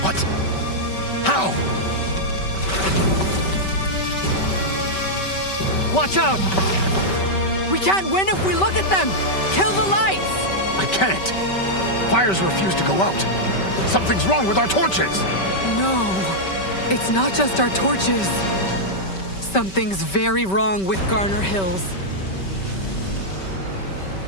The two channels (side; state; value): right; late; 5.2 ms